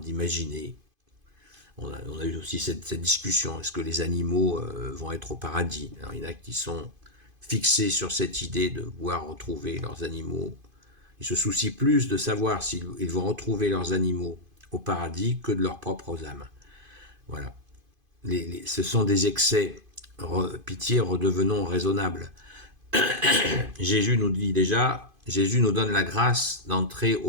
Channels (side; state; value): left; late; 2.5 ms